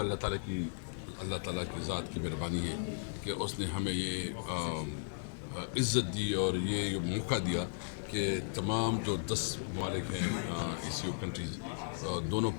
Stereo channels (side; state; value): right; silent; 54 dB below the other